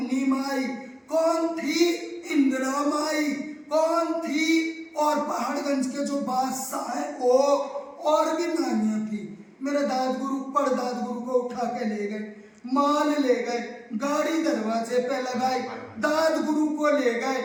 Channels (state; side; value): identical; both; correlation 1.00